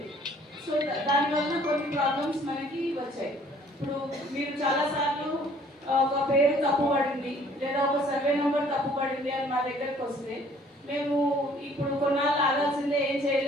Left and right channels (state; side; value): normal; both; correlation 0.57